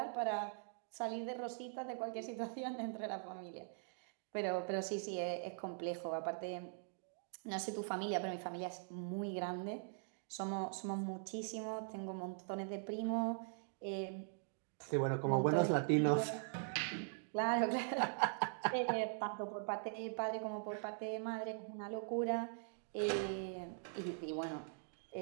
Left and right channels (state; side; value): silent; left; digital silence